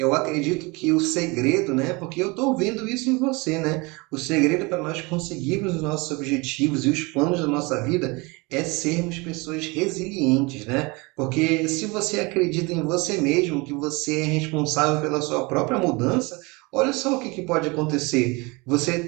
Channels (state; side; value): quieter; left; 26.3 dB